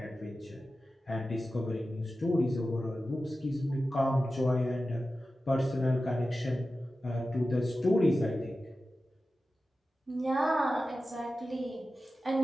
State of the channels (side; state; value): both; normal; correlation 0.94